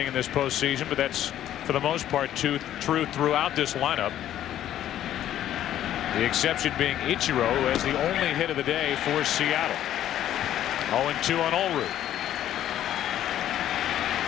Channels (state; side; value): quieter; right; 11.8 dB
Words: in this postseason, but that's for the most part true throughout this lineup. The exception being Ichiro, who has the only hit of the day for Seattle. 0-2 on Olrud.